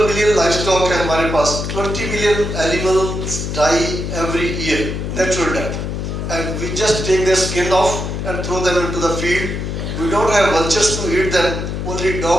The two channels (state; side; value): noise; left; hum, 4 dB below the sound